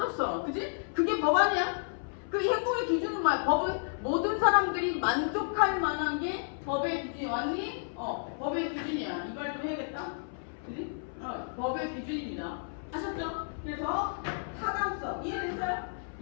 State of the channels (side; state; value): right; silent; 57 dB below the other